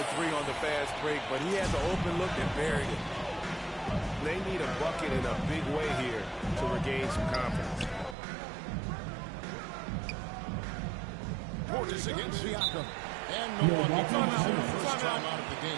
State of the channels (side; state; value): left; drops out; at 8.2 s